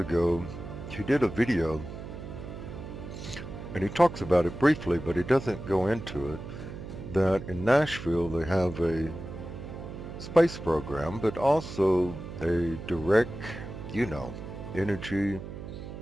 he did a video, and he talks about it briefly, but he doesn't go into it, that in Nashville they have a space program, but also a direct, energy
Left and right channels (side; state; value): right; noise; hum, 10 dB below the sound